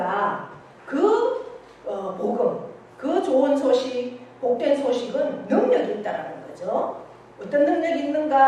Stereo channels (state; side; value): identical; both; correlation 1.00